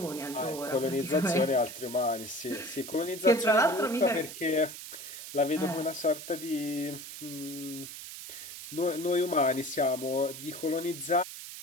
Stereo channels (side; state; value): right; noise; hiss, 11 dB below the sound